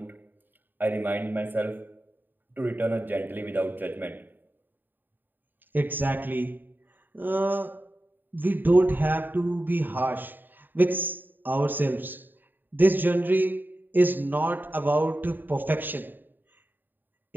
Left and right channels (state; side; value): late; left; 0.091 ms